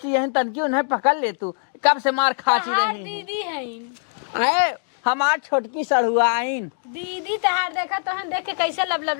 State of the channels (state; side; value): silent; right; digital silence